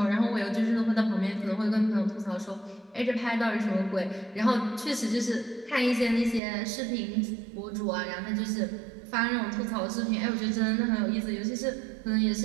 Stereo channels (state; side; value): drops out; left; at 6.4 s